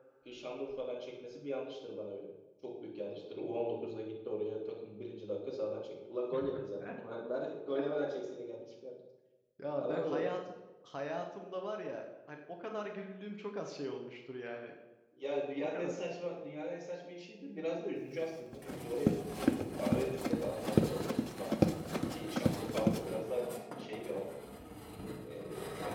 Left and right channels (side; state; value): both; identical; correlation 1.00